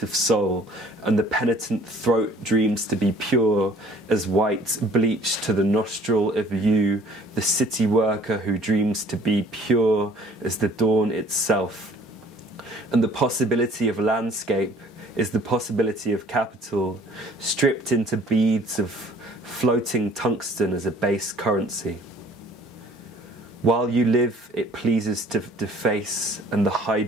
soul, and the penitent throat dreams to be pure as white bleached to the nostril of you, the city worker who dreams to be pure as the dawn itself. And the possibility of landscape is the possibility of capital, stripped into beads of floating tungsten as a base currency. While you live, it pleases to deface, and the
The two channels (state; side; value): normal; both; correlation 0.54